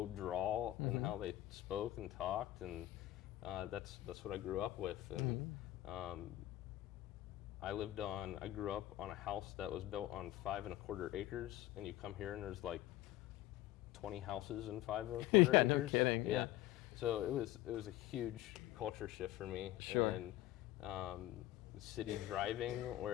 drawl in how they spoke and talked, and that's what I grew up with. And I grew up on a house that was built on 5 1/4 acres, and you come here and there's like 20 houses in 5 1/4 acres. No kidding. Yeah. So it was a huge culture shift for me. Sure. And city driving,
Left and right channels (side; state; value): right; quieter; 15.5 dB